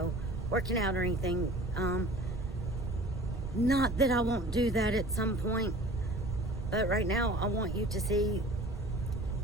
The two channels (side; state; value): right; noise; rumble, 7 dB below the sound